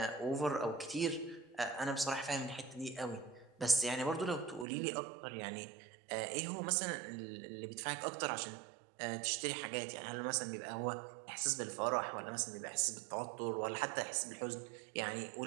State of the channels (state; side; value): drops out; left; at 4.7 s